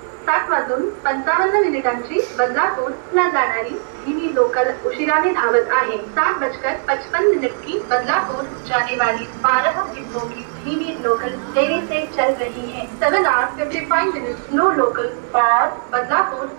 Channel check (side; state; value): left; silent; digital silence